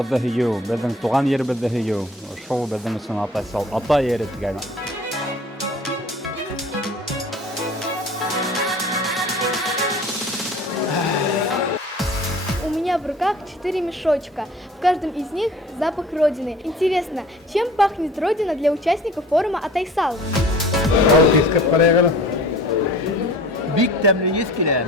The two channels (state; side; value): normal; both; correlation 0.46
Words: һөйөү, безнең туган еребезде һөйөү. Шул безнең өсөн Атайсал, ата ере дигән. У меня в руках 4 мешочка. В каждом из них запах Родины. Интересно, чем пахнет Родина для участников форума Атайсал? Бик тәмле ес килә.